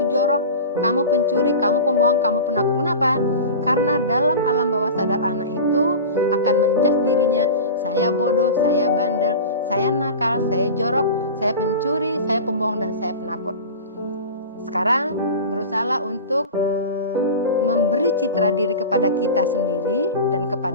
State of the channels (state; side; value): inverted; both; correlation -0.31